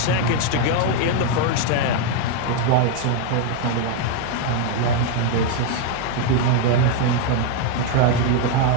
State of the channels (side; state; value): both; different; correlation 0.01